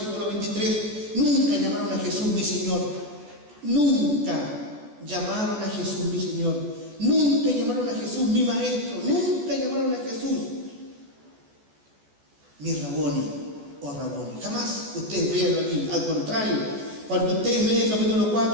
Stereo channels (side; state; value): left; late; 14 ms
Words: 23, nunca llamaron a Jesús mi Señor. Nunca llamaron a Jesús mi Señor. Nunca llamaron a Jesús mi Maestro. Nunca llamaron a Jesús mi Raboni o Raboni. Jamás ustedes vean aquí. Al contrario, cuando ustedes leen el capítulo